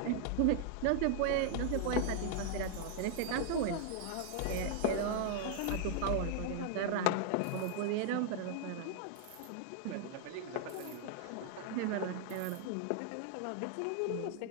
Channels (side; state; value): both; different; correlation 0.00